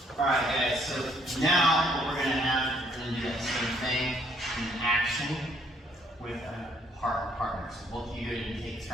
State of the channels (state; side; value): normal; both; correlation 0.67